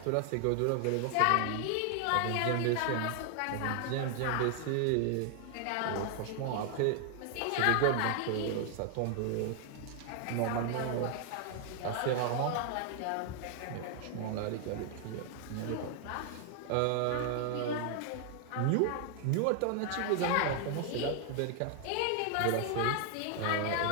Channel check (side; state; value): both; different; correlation 0.00